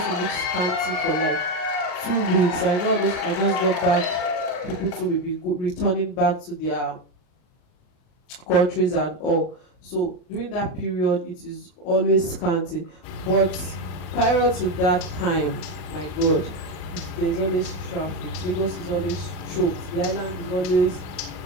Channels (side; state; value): right; late; 39 ms